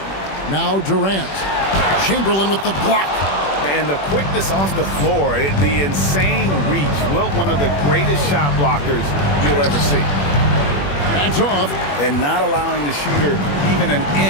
Now Durant. Chamberlain with the block. And the quickness off the floor, the insane reach. Wilt, one of the greatest shot blockers you'll ever see. That's off. And not allowing the shooter even an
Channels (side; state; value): right; late; 21 ms